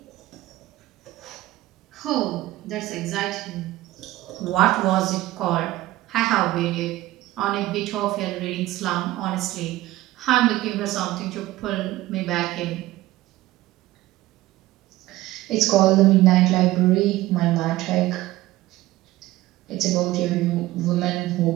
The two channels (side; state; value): left; quieter; 16.8 dB